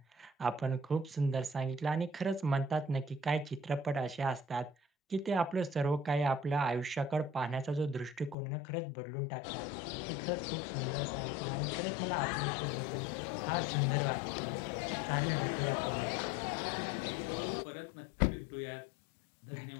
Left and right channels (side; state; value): right; drops out; at 8.3 s